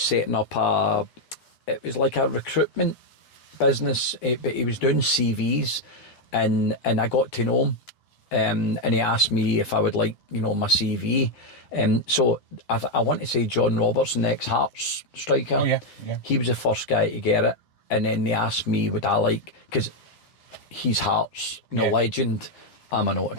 up it was like a recruitment business, but he was doing CVs, and I got to know him. And he asked me if I would like, my CV. So I want to say John Robertson, ex-Hearts striker. Oh, yeah. He was the first guy to get it. And then they asked me, would I like, because he's Hearts, legend. I'm an auto.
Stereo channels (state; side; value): late; right; 9.8 ms